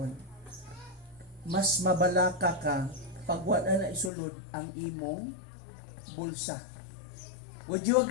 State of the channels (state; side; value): drops out; right; at 4.1 s